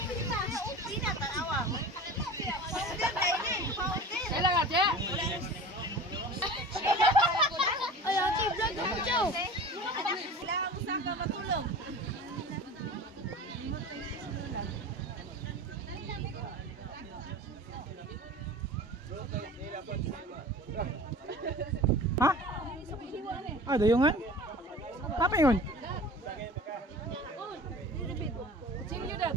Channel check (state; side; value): normal; both; correlation 0.38